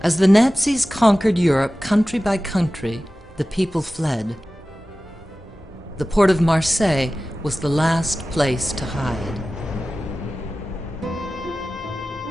As the Nazis conquered Europe country by country, the people fled. The port of Marseille was the last place to hide.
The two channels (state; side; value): normal; both; correlation 0.96